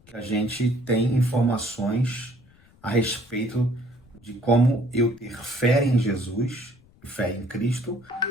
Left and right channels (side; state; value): left; noise; rumble, 29 dB below the sound